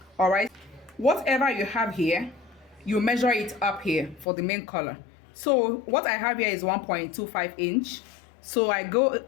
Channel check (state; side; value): drops out; right; at 4.2 s